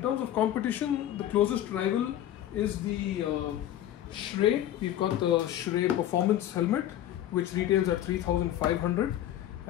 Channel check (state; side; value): quieter; right; 12.2 dB